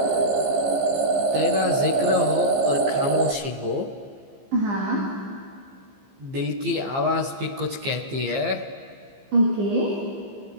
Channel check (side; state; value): left; late; 15 ms